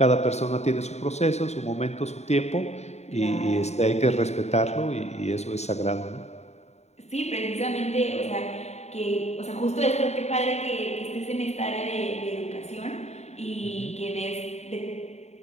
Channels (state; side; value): late; right; 0.32 ms